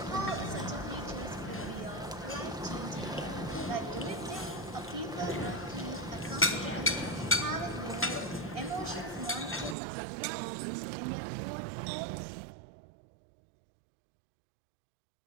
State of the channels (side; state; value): left; drops out; at 9.8 s